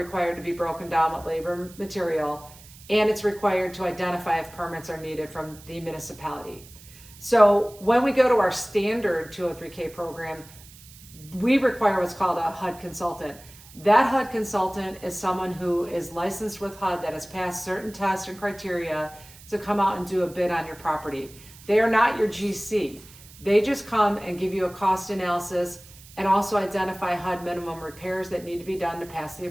to be broken down with labor material, and it's required to identify if permits are needed from the municipality. So when we go to our standard 203K program, we require what's called a Hud Consultant. That Hud Consultant is someone who is licensed with HUD that has passed certain tests and criteria to come out and do a bid on your property. They are not your GC. They just come and give you a cost analysis and also identify HUD minimum repairs that need to be done to pass the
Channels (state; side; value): noise; right; hiss, 21 dB below the sound